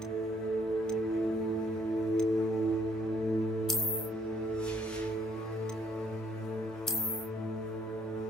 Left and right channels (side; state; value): both; normal; correlation 0.66